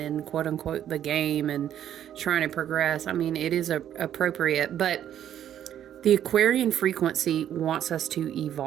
quote unquote the game and trying to progress, I mean, it is appropriate. But the Aquarian frequency wants us to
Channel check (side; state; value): left; quieter; 10.5 dB